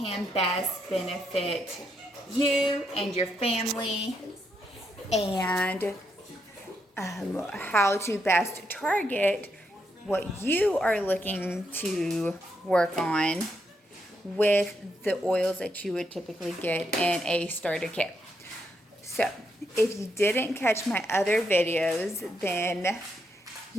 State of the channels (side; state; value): both; normal; correlation 0.80